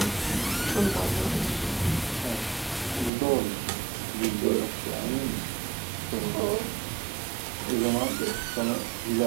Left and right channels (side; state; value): left; drops out; at 3.1 s